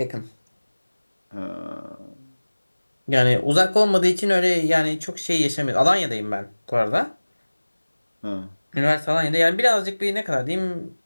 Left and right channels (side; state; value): both; inverted; correlation -1.00